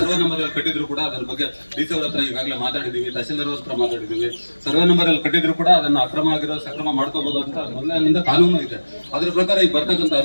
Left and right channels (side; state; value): both; inverted; correlation -1.00